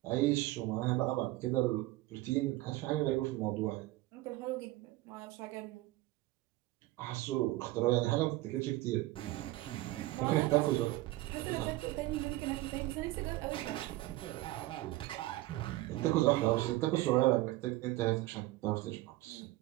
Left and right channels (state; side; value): quieter; left; 18.3 dB